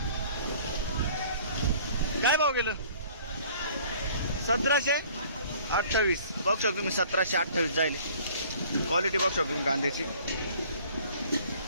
काय भाव गेलं? 1728 बघू शकतो तुम्ही. 1728 जाईल. क्वालिटी बघू शकतो तुम्ही कांद्याची.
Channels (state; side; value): inverted; both; correlation -0.53